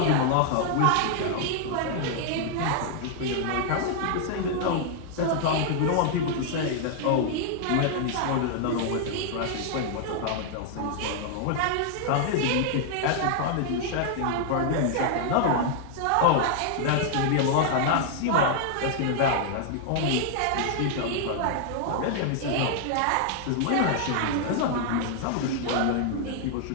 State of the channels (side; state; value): both; different; correlation 0.00